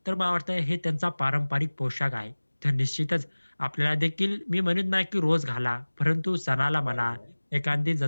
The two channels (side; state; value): both; inverted; correlation -1.00